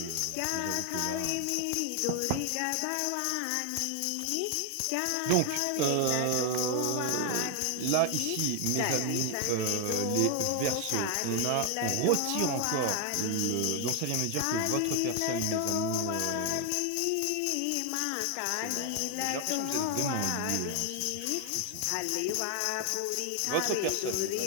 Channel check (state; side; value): different; both; correlation 0.00